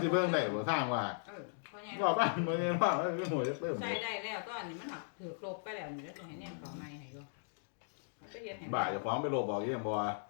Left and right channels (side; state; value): right; silent; digital silence